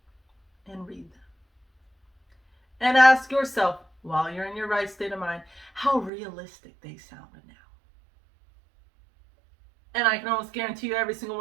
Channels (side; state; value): left; drops out; at 6.1 s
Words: and read them. And ask yourself, while you're in your right state of mind, how realistic they sounded now. And I can almost guarantee you every single